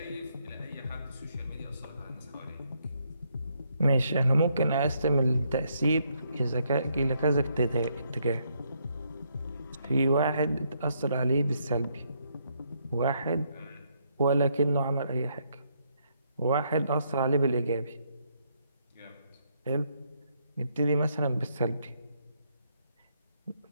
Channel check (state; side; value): inverted; both; correlation -0.74